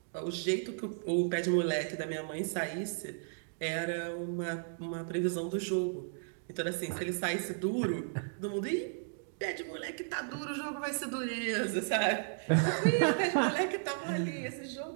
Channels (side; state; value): left; silent; digital silence